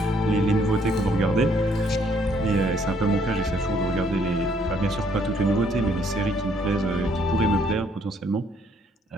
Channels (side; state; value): both; normal; correlation 0.67